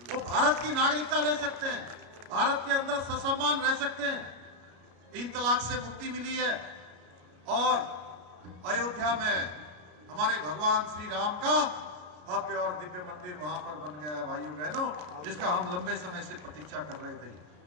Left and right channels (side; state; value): left; late; 33 ms